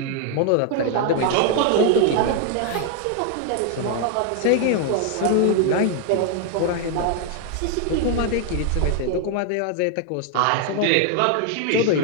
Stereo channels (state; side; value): different; both; correlation 0.00